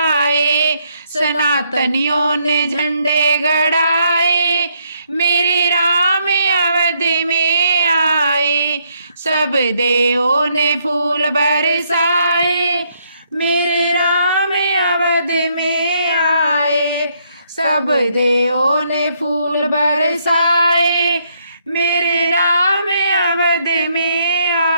सनातनियों ने झंडे गड़ाए, मेरे राम अवध में आए, सब देवों ने फूल बरसाए, मेरे राम अवध में आए, सब देवों ने फूल बरसाए, मेरे राम अवध में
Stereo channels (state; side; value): inverted; both; correlation -0.73